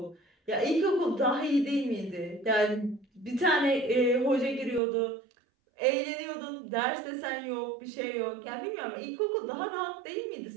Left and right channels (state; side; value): drops out; left; at 4.8 s